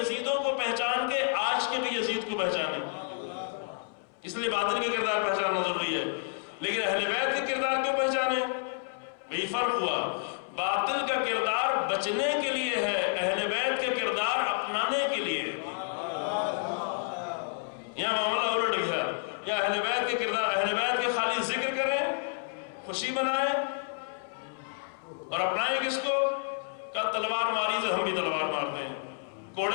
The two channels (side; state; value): right; silent; 58 dB below the other